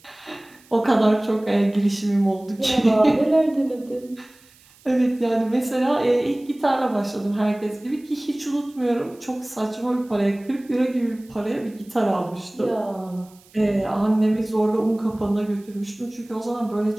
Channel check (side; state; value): right; noise; hiss, 28 dB below the sound